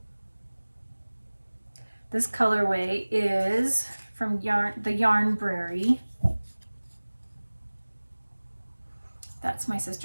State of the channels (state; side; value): inverted; both; correlation -1.00